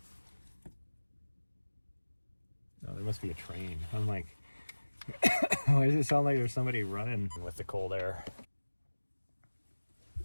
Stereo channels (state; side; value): inverted; both; correlation -1.00